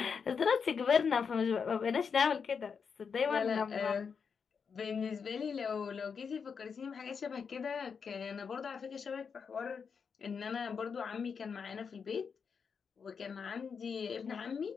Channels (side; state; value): right; quieter; 6.1 dB